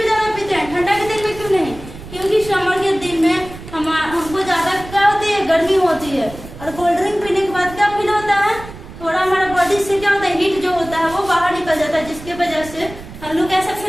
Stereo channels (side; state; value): right; noise; rumble, 15 dB below the sound